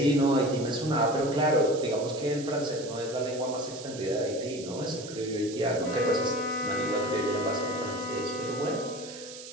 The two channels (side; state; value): right; noise; hiss, 14 dB below the sound